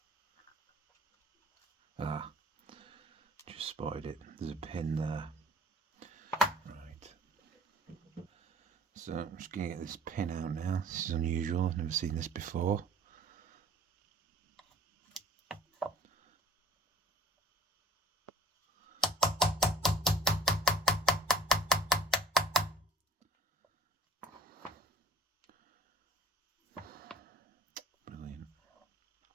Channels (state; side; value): normal; both; correlation 0.51